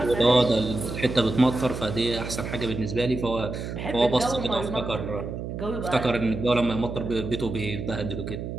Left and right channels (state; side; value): noise; right; hum, 6 dB below the sound